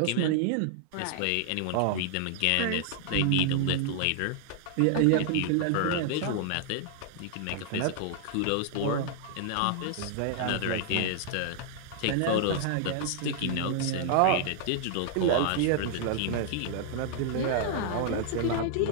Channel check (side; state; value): both; different; correlation -0.01